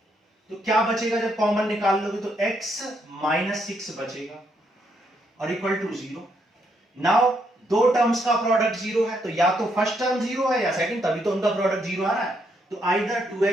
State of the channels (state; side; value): normal; both; correlation 0.75